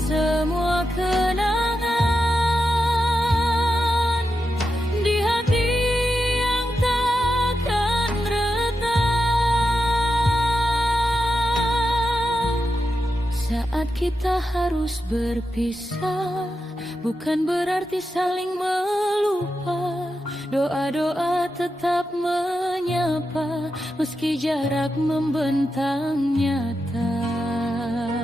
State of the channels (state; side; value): normal; both; correlation 0.88